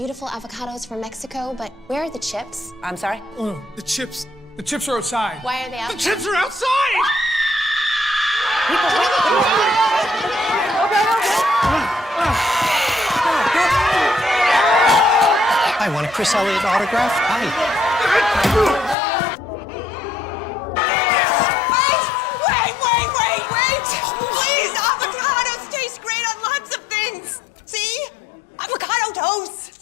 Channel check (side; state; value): right; drops out; at 18.9 s